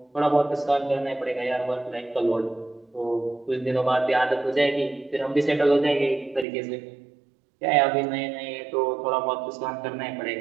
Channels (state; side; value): drops out; left; at 6.5 s